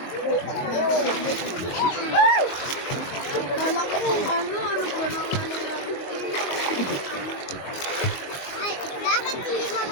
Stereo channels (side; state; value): right; late; 22 ms